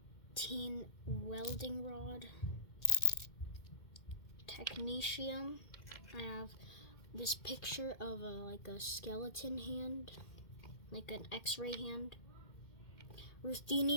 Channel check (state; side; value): late; right; 2.1 ms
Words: welding rod. Technetium. I have this picture of a skeleton hand, like an X-ray hand.